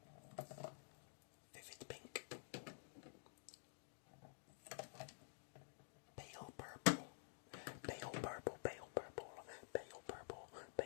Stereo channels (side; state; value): right; silent; digital silence